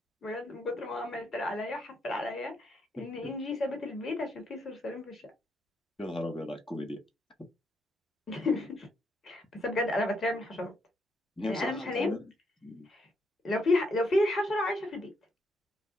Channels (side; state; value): both; normal; correlation 0.76